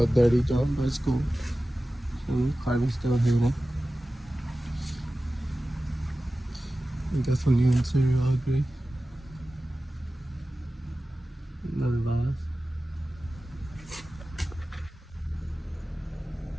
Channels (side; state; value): both; normal; correlation 0.95